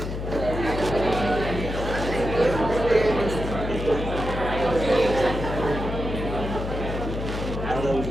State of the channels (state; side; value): noise; left; hum, 5 dB below the sound